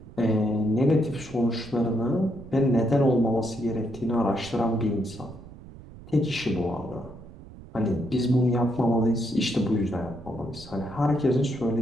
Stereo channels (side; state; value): right; noise; rumble, 17 dB below the sound